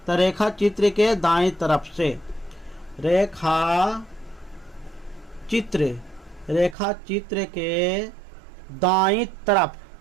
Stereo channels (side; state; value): left; drops out; at 6.8 s